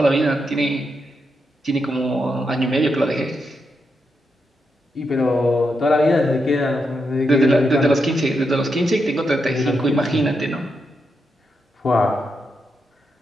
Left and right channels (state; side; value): normal; both; correlation 0.84